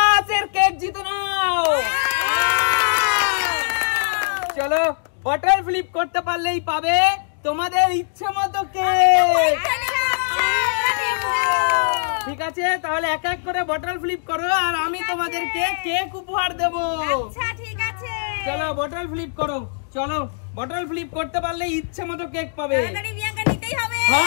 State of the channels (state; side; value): silent; right; digital silence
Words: এর cake জিতে নাও। চলো বটল ফ্লিপ করতে পারলেই পাবে তোমাদের ইচ্ছে মতো কেক। ঠিক আছে, তাহলে এক এক করে বটল ফ্লিপ করো আর আমি তোমাদেরকে কেক উপহার দেব। আচ্ছা ঠিক আছে, চলো বটল ফ্লিপ করো। চলো বটল ফ্লিপ করতে পারলে ইচ্ছে মতো কেক পাবে। তাড়াতাড়ি বিয়াঙ্কা নিতেই হবে।